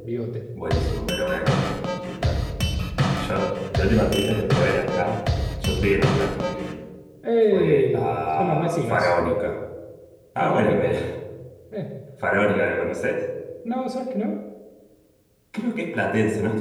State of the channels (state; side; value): identical; both; correlation 1.00